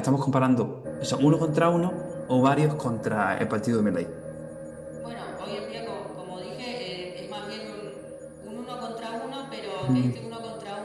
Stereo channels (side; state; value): both; identical; correlation 1.00